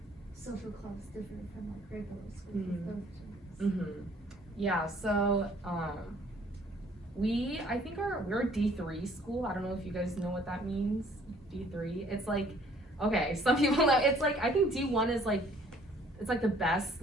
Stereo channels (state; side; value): normal; both; correlation 0.58